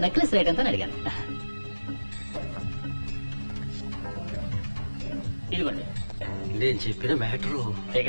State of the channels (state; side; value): inverted; both; correlation -1.00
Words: నెక్లెస్ రేట్ ఎంత అని అడిగాను. ఇదిగోండి. నేను చెప్పిన మ్యాటరు